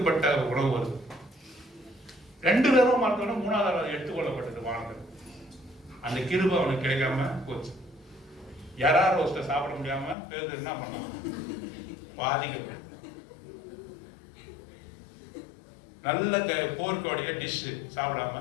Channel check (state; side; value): drops out; right; at 10.2 s